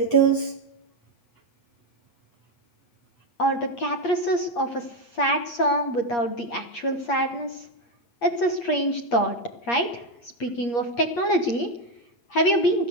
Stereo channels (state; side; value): late; right; 8.4 ms